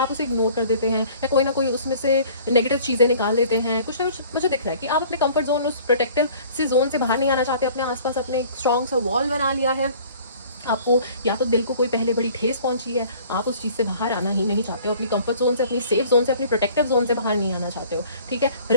उसे इग्नोर कर देते हैं या कोई ना कोई उसमें से नेगेटिव चीज़ें निकाल देते हैं, कुछ ना कुछ मुझे दिख रहा है कि आप अपने कंफर्ट जोन, उस प्रोटेक्टिव से जोन से बाहर नहीं आना चाहते, अपने आसपास अपने एक स्ट्रॉन्ग सा वॉल बना लिया है। आपको या तो दिल को कोई पहले बड़ी ठेस पहुंची है, आप उस चीज़ से बाहर आना ही नहीं चाहते हो, अपनी कंफर्ट जोन से, अपनी सेफ जोन से, अपनी प्रोटेक्टिव जोन से बाहर नहीं आना चाहते हो, ठीक है,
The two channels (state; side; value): inverted; both; correlation -0.51